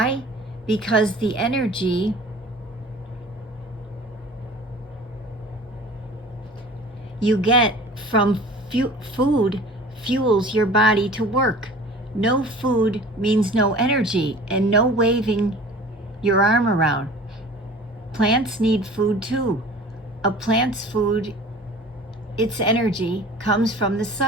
Because the energy you get from food fuels your body to work. No food means no energy and no waving your arm around. Plants need food too. A plant's food, its energy, comes from the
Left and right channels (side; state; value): both; normal; correlation 0.43